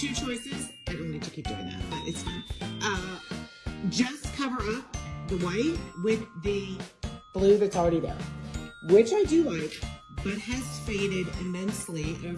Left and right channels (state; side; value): identical; both; correlation 1.00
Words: choices. I don't need to keep doing that, but it's fine. Just cover up the white with the blue that's already there, which I do like, but has faded immensely